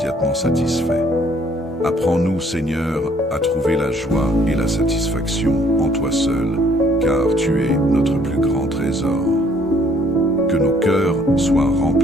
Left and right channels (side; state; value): both; normal; correlation 0.62